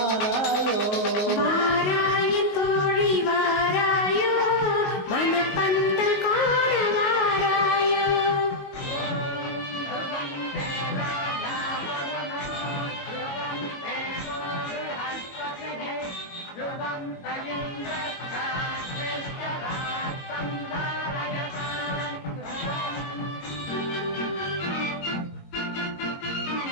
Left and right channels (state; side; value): late; right; 19 ms